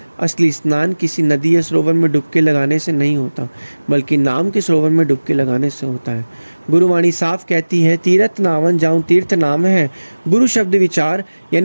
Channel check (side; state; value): both; inverted; correlation -1.00